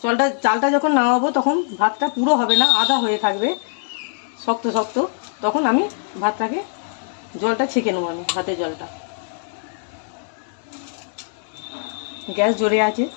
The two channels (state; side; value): silent; right; digital silence